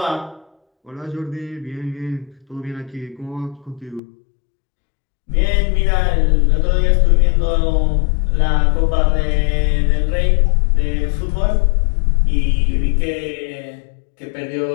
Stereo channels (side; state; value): right; drops out; at 4.0 s